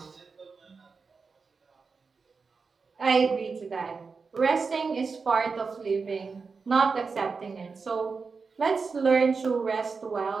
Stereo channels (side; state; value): left; quieter; 4.8 dB